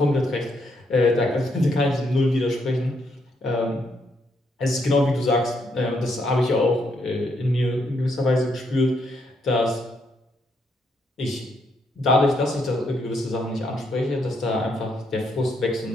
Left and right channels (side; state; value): both; normal; correlation 0.76